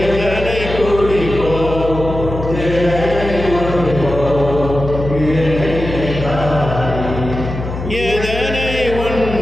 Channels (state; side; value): noise; left; hum, 7 dB below the sound